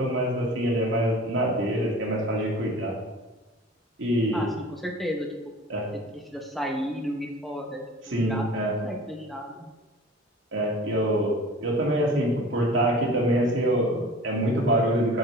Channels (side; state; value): both; normal; correlation 0.42